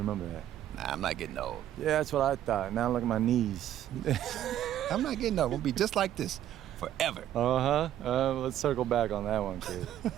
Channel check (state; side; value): quieter; left; 11.8 dB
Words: that. Nah, I'm not getting old. Yeah, that's what I thought. Now look at my knees. I'm not getting old. We'll be just like this forever. Let's circle back on that one, kid.